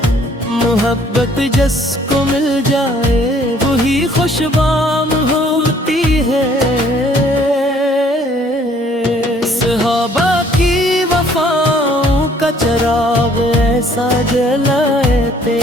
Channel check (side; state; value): both; normal; correlation 0.60